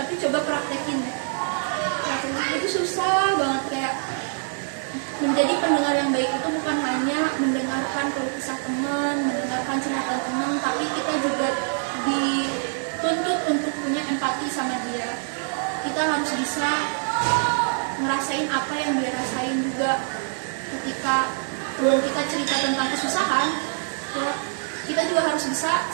coba praktekin itu susah banget. Kayak menjadi pendengar yang baik itu bukan hanya mendengarkan keluh kesah teman, mendengarkan cerita teman, tapi kita juga dituntut untuk punya empati sama dia. Kita harus bisa ngerasain apa yang dia rasain juga. Ketika teman kita cerita tentang kesusahan, kita juga harus bisa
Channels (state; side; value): silent; left; 62 dB below the other